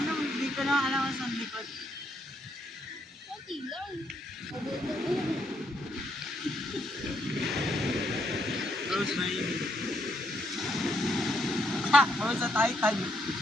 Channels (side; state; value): both; normal; correlation 0.75